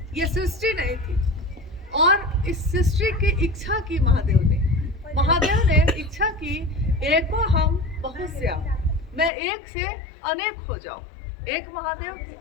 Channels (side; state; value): right; drops out; at 9.3 s